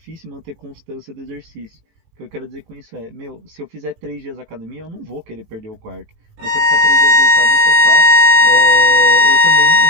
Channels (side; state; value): left; late; 19 ms